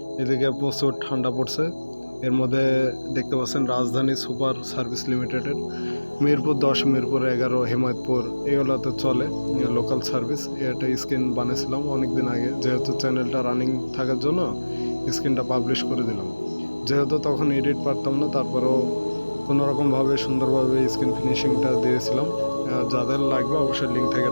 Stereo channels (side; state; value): both; inverted; correlation -1.00